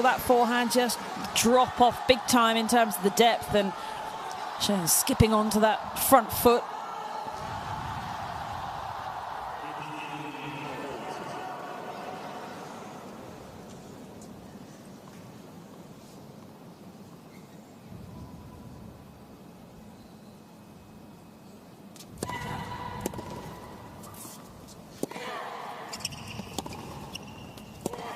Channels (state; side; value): identical; both; correlation 1.00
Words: that forehand just drop off big time in terms of the depth, and Zheng skipping onto that front foot.